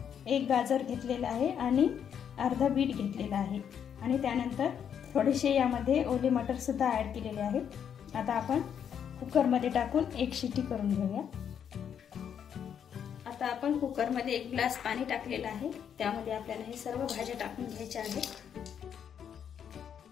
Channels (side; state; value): right; quieter; 8.3 dB